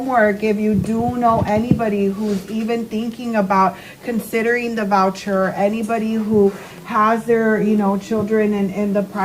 If you do know anybody who's even thinking about considering the voucher, anybody who has their, children in the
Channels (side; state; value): both; identical; correlation 1.00